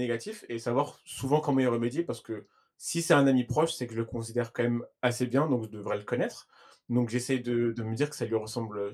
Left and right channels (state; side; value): identical; both; correlation 1.00